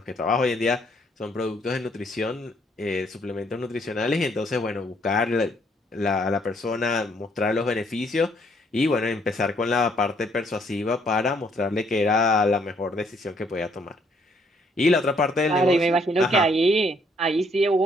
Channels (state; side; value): normal; both; correlation 0.67